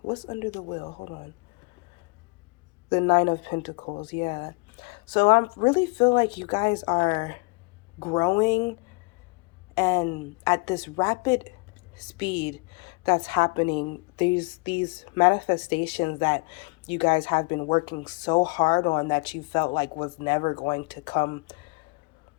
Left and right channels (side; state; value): right; quieter; 30.1 dB